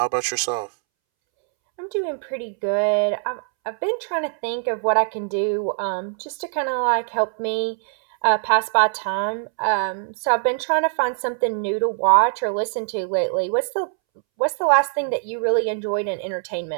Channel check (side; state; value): left; silent; 64 dB below the other